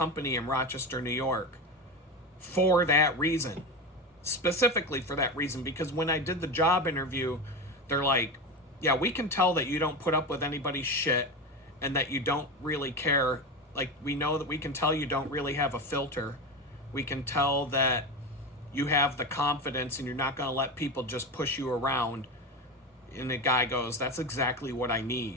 in Rochester, New York for that reason. Specifically for that reason, because when I did the job interview, they're like, yeah, we can tell that you don't put up with anybody's shit and that you don't really care. Like, we know that we can tell you don't really have a filter. We can tell that you have the confidence and you're not going to let people just push you around. And the guy goes, that's exactly what I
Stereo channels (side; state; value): both; normal; correlation 0.21